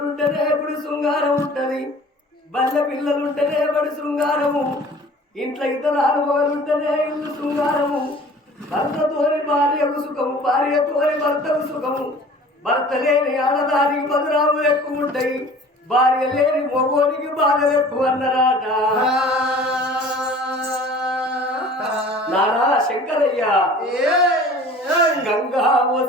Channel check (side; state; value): both; normal; correlation 0.46